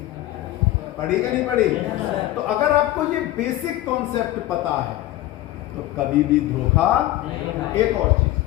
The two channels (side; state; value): right; quieter; 15.4 dB